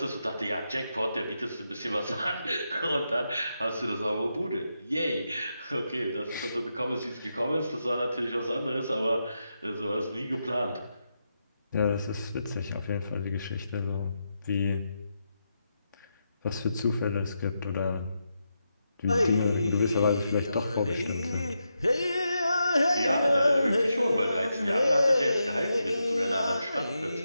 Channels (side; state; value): both; inverted; correlation -0.85